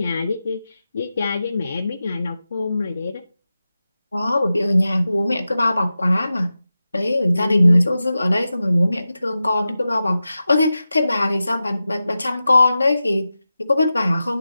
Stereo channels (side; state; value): both; inverted; correlation -0.93